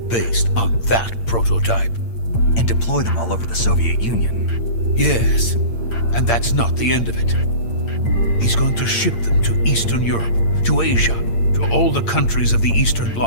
based on that prototype. And deploy them all over the Soviet Union. Yes, and that's not the end of it. He's going to ship them to Eastern Europe, to Asia, to all the countries of the Eastern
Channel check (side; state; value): right; late; 8.7 ms